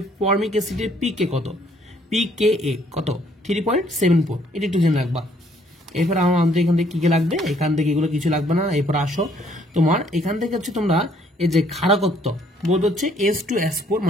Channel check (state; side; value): normal; both; correlation 0.65